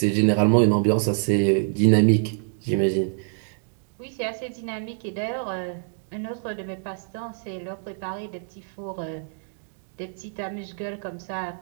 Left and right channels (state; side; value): silent; left; 61 dB below the other